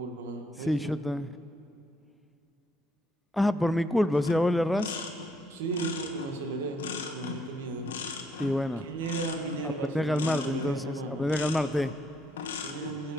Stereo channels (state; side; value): normal; both; correlation 0.72